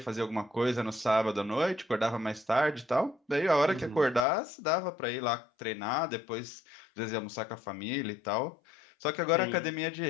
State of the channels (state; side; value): drops out; right; at 4.2 s